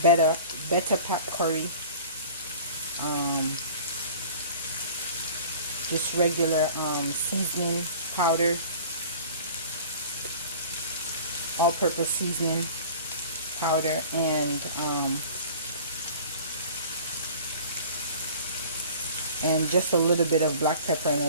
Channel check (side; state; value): both; inverted; correlation -0.43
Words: better pack curry, just regular seasoning powder, all-purpose seasoning powder, and just a little bit of black pepper and a